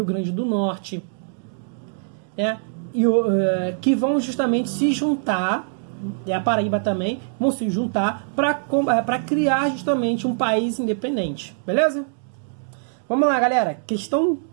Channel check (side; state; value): left; silent; digital silence